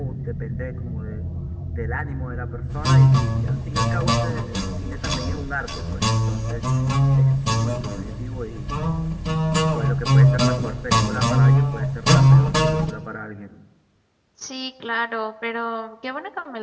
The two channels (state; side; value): identical; both; correlation 1.00